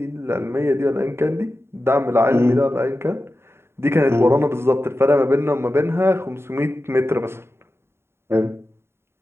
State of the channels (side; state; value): left; late; 0.12 ms